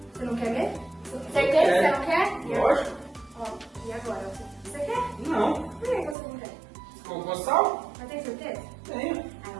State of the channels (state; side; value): drops out; left; at 6.2 s